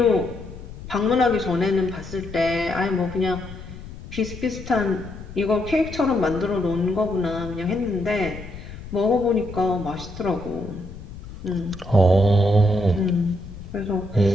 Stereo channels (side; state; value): left; noise; rumble, 13 dB below the sound